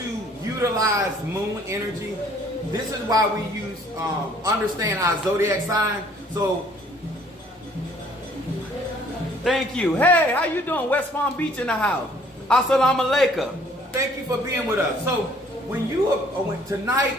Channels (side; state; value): both; normal; correlation 0.59